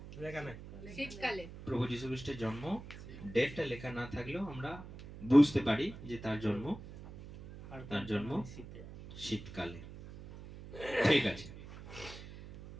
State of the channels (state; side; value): noise; right; hum, 14 dB below the sound